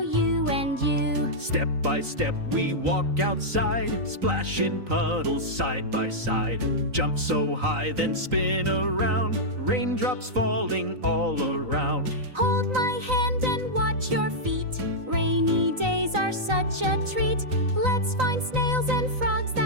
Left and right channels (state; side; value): late; left; 3.9 ms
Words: and you. Step by step we walk outside, splash in puddles side by side. Jump so high then spin around, raindrops falling all around. Hold my hand and watch your feet. Rainy days are such a treat. Let's find snails and frogs